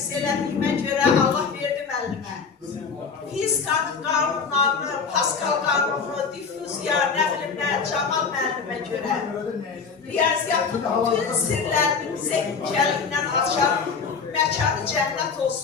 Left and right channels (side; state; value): right; quieter; 5.5 dB